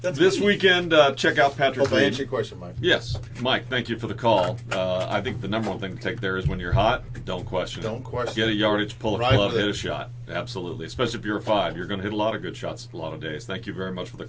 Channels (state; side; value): identical; both; correlation 1.00